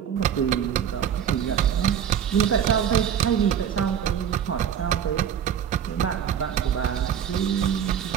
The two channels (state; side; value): quieter; left; 8.9 dB